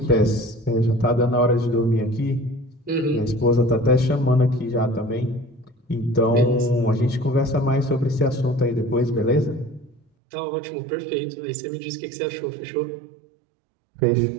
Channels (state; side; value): drops out; left; at 10.0 s